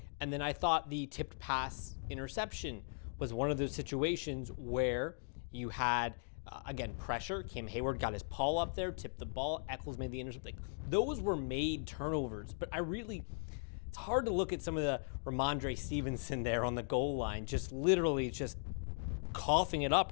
And then I thought the tipped pass interception was one of those situations where you had, again, pressure. Cam Hayward got his paw up there, tipped the ball. Eccles made the interception. Those were made turnovers. But it's hard to look at some of the Ramondre Stevenson there on the goal line, just literally just coughing it up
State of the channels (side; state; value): right; silent; digital silence